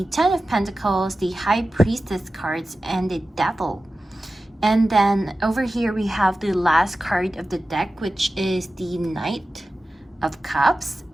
Ten of Pentacles, the High Priestess cards, and the Devil. And then over here we have the last card of the deck, which is the Knight of Cups,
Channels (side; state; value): both; normal; correlation 0.95